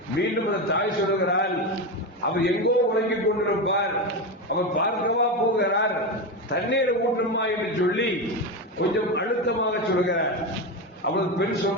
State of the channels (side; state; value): both; normal; correlation 0.16